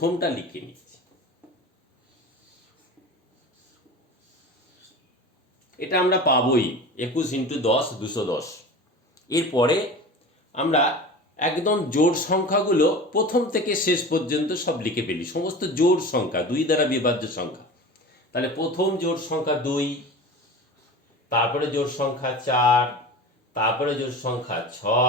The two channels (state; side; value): normal; both; correlation 0.34